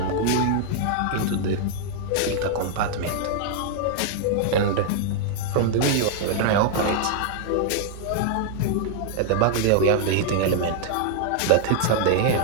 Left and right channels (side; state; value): both; different; correlation 0.00